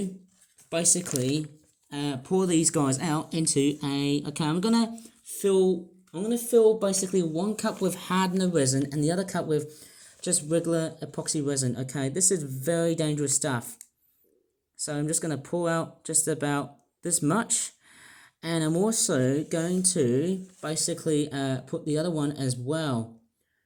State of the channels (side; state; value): both; identical; correlation 1.00